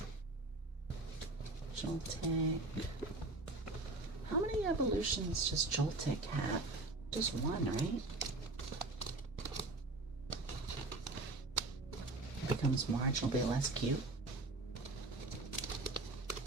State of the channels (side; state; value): left; quieter; 3.1 dB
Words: Joltik. How many evolutions does Joltik have? Just one, right? It becomes marginally less cute.